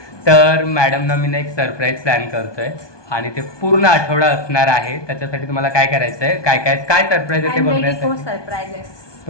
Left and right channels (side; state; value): right; late; 1.2 ms